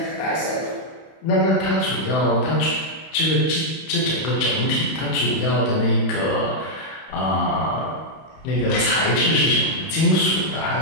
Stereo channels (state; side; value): late; right; 31 ms